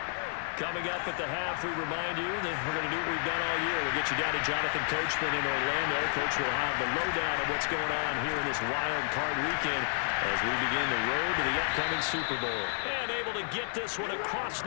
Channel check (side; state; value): right; silent; 57 dB below the other